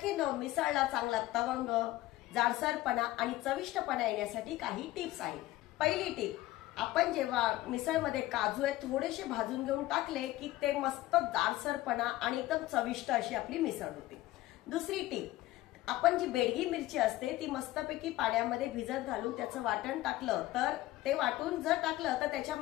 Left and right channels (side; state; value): right; quieter; 16.6 dB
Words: मिसळला चांगला तवंग, जाडसरपणा आणि चविष्टपणा येण्यासाठी काही टिप्स आहेत। पहिली टिप, आपण जेव्हा मिसळमध्ये काजू आहे थोडेसे भाजून घेऊन टाकले की ते मस्त जाडसरपणा आणि एकदम चविष्ट अशी आपली मिसळ होते। दुसरी टिप, आपण जी बेडगी मिरची असते ती मस्तपैकी पाण्यामध्ये भिजत घालून त्याचं वाटण टाकलं तर ते वाटून जर टाकलं तर